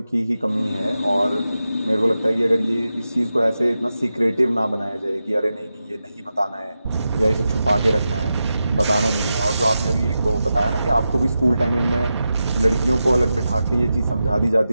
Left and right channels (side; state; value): both; inverted; correlation -0.90